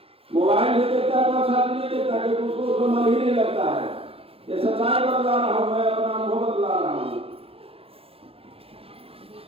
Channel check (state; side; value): late; left; 0.27 ms